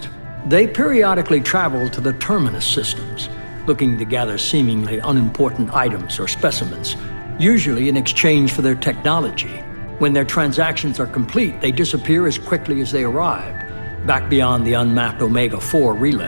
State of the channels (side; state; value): both; inverted; correlation -1.00